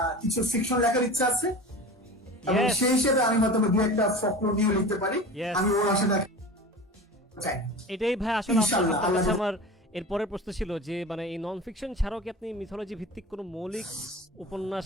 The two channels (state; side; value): normal; both; correlation 0.34